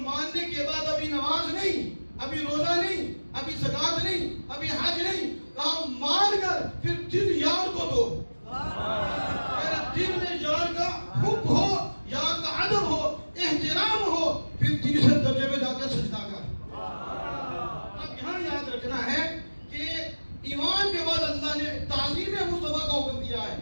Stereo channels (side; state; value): both; inverted; correlation -1.00